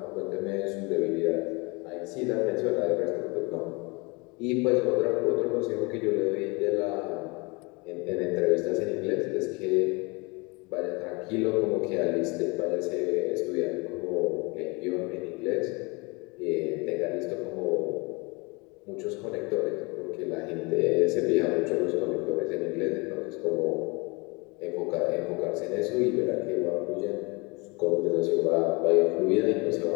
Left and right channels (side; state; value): right; quieter; 27.6 dB